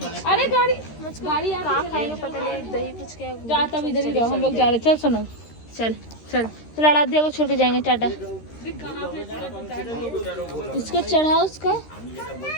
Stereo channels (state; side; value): late; right; 13 ms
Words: अरे गाड़ी कहाँ खाएंगे पता नहीं। दही फुचका जा तब इधर ही रहो। हम लोग जा रहे। चल सुनो चल आराध्या को छोड़ के जाएंगे। टाटा। इसका चढ़ाओ उसका